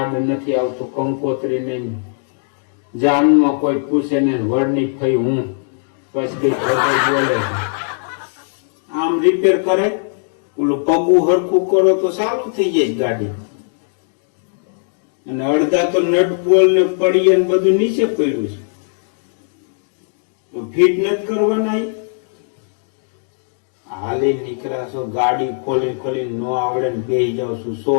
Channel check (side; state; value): right; silent; digital silence